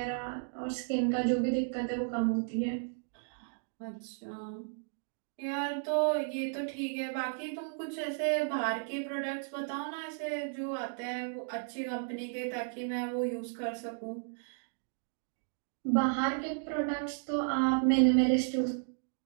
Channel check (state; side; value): silent; left; digital silence